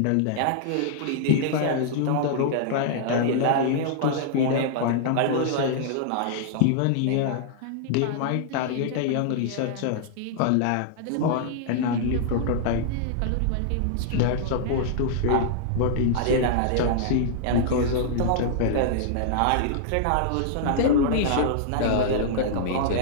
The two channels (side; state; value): both; different; correlation -0.01